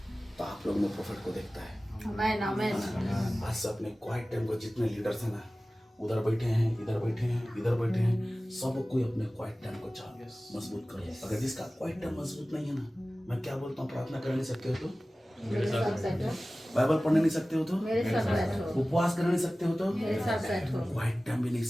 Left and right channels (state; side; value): normal; both; correlation 0.97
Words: तो आप लोग में प्रोफेट को देखता है। आमेन आमेन। आज से अपने क्वाइट टाइम को जितने लीडर्स हैं ना, उधर बैठे हैं, इधर बैठे हैं, इधर बैठे हैं, सब कोई अपने क्वाइट टाइम को मजबूत करो। अगर जिसका क्वाइट टाइम मजबूत नहीं है ना, मैं क्या बोलता हूँ, प्रार्थना कर नहीं सकते हो तो, मेरे साथ बैठो, बाइबल पढ़ने नहीं सकते हो तो, मेरे साथ बैठो, उपवास करने नहीं सकते हो तो, मेरे साथ बैठो, क्वाइट टाइम भी नहीं